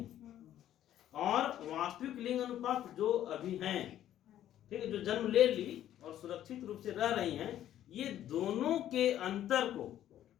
और वास्तविक लिंग अनुपात जो अभी हैं, ठीक है, जो जन्म ले ली और सुरक्षित रूप से रह रही हैं, ये दोनों के अंतर को,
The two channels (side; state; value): right; quieter; 11.8 dB